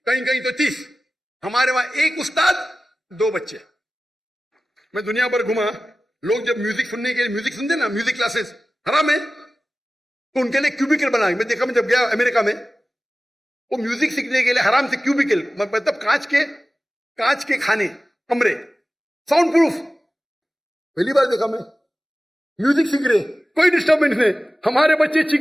कहीं कहीं तो 30। हमारे वहां एक उस्ताद 2 बच्चे। मैं दुनिया भर घुमा, लोग जब म्यूजिक सुनने के लिए, म्यूजिक सुनते ना, म्यूजिक क्लासेस हराम है, तो उनके लिए क्यूबिकल बना। मैं देखा, मैं जब गया अमेरिका में, वो म्यूजिक सीखने के लिए हराम से क्यूबिकल, मतलब कांच के खाने, कमरे, साउंड प्रूफ। पहली बार देखा मैं, म्यूजिक सीख रहे, कोई डिस्टर्बेंस नहीं। हमारे बच्चे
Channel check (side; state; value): both; normal; correlation 0.96